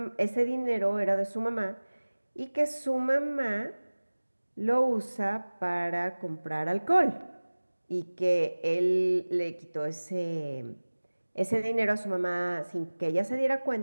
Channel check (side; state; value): both; inverted; correlation -1.00